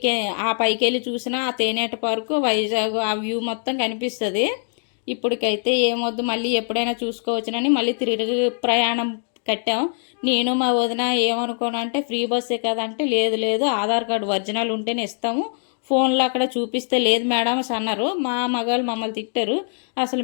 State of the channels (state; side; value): silent; right; 64 dB below the other